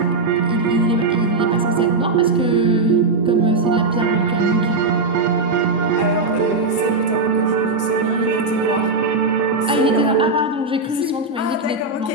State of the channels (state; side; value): quieter; left; 3.5 dB